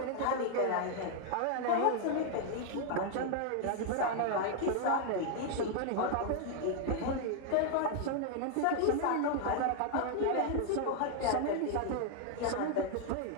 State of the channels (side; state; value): both; different; correlation 0.00